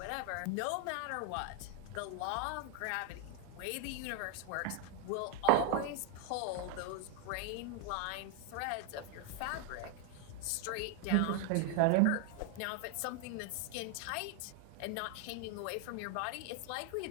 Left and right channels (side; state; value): both; different; correlation 0.00